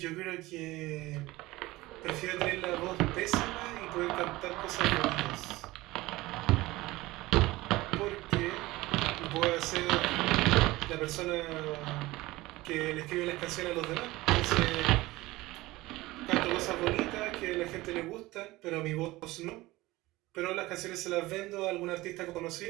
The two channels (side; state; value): left; quieter; 19.2 dB